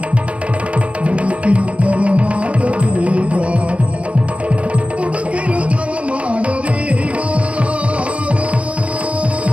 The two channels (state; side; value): late; left; 0.062 ms